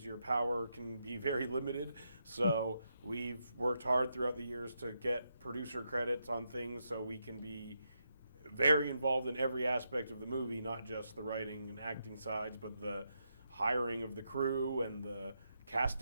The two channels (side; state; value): both; inverted; correlation -0.83